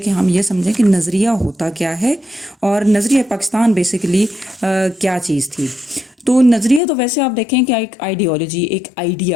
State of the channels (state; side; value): drops out; right; at 6.8 s